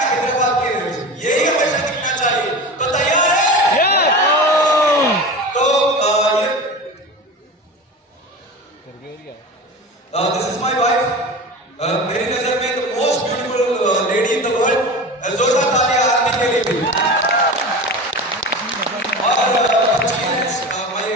हैदराबाद की एनर्जी, यही हमेशा दिखना चाहिए। तो तैयार है? तो दिस इज माय वाइफ। मेरी नजर में the most beautiful lady in the world. जोरदार तालियां आरती के लिए भी। और my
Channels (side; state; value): both; normal; correlation 0.31